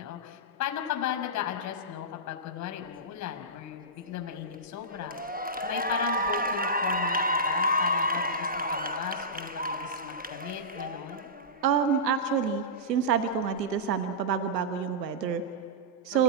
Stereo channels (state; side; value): normal; both; correlation -0.14